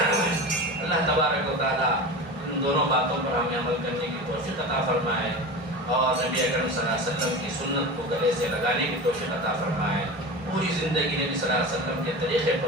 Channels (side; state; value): both; normal; correlation 0.29